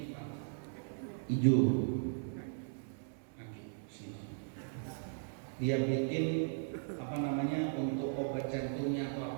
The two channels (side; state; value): left; silent; digital silence